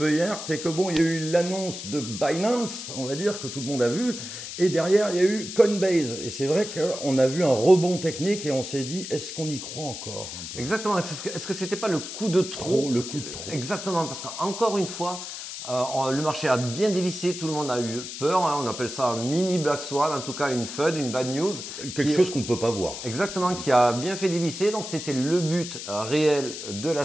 hier, c'est que bon, il y a eu l'annonce de Binance, on va dire, que tout le monde a vu, et derrière il y a eu Coinbase. Et c'est vrai qu'on a vu un rebond technique et on s'est dit, est-ce qu'on y croit encore un peu? Exactement, est-ce que c'était pas le coup de trop? Le coup de trop. Exactement, parce qu'encore une fois, le marché a bien dévissé, tout le monde a eu peur, on appelle ça un mini Black Swan, en tout cas une FUD, une bad news. Quelque chose qu'on ne peut pas voir. Exactement, qui a bien fait dévisser, donc c'était le but réel de la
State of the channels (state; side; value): noise; left; hiss, 9 dB below the sound